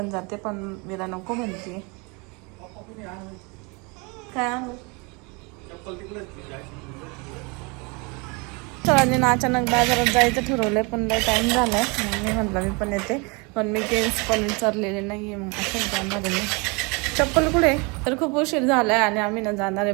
जाते, पण वीरा नको म्हणते. काय आणू? सरांनी अचानक बाजारात जायचं ठरवलंय, पण लय टाइम झालाय. मग मी म्हटलं मी पण येते, पण मी केस पण विचारलेले नाहीये. मग असं जाणार आहे. चप्पल कुठे? तर खूप उशीर झालाय आणि आम्ही ना जाणार आहे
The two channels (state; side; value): quieter; left; 29.6 dB